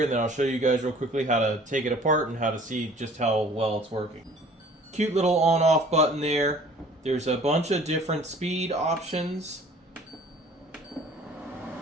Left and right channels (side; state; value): both; normal; correlation 0.51